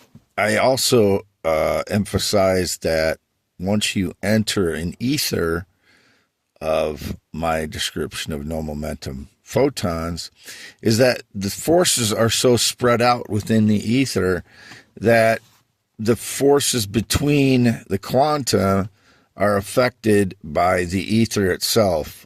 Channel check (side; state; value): both; identical; correlation 1.00